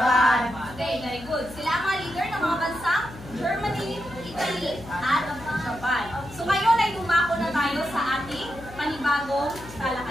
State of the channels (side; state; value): left; noise; hum, 16 dB below the sound